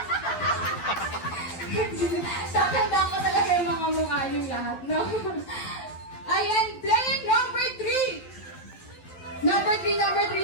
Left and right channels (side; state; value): right; late; 12 ms